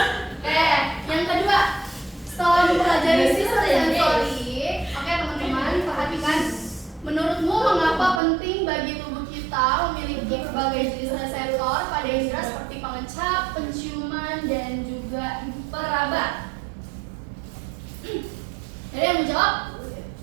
yang kedua, setelah mempelajari sistem sensori, oke teman-teman perhatikan. Menurutmu mengapa penting bagi tubuh kita memiliki berbagai jenis reseptor pada indera seperti pengecap, penciuman, dan juga peraba? Ada yang mau jawab?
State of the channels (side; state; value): left; drops out; at 8.2 s